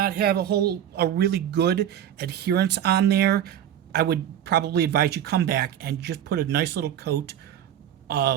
have a really good adherence on there, I would probably advise you come back and just put a nice little coat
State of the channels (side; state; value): left; quieter; 10.3 dB